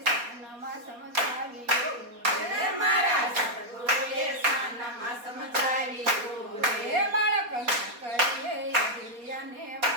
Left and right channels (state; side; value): late; left; 4.2 ms